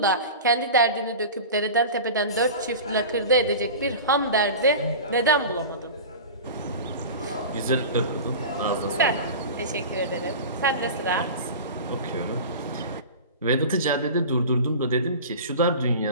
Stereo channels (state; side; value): inverted; both; correlation -0.33